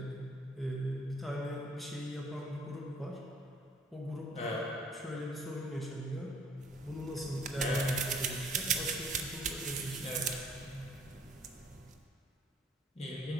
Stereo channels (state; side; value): normal; both; correlation 0.59